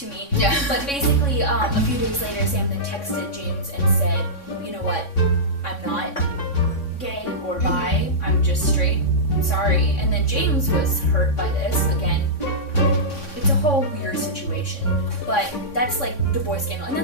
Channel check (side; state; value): right; late; 3.6 ms